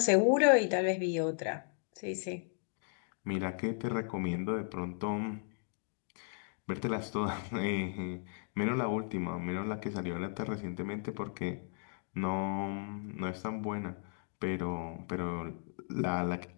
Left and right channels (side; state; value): right; silent; digital silence